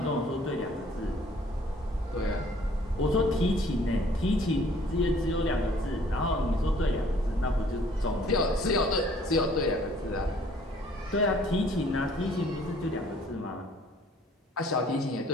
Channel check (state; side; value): normal; both; correlation 0.57